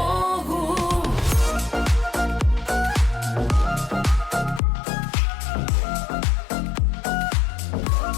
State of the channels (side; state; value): right; drops out; at 4.6 s